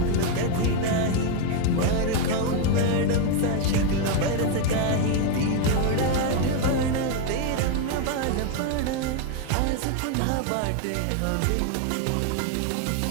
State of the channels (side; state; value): both; different; correlation 0.01